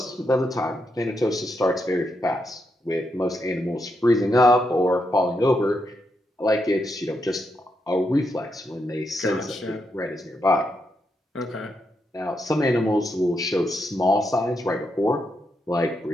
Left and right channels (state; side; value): normal; both; correlation 0.82